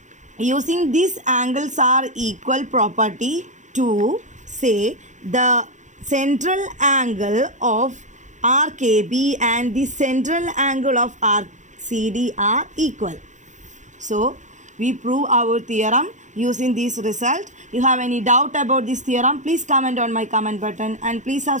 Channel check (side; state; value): left; late; 0.35 ms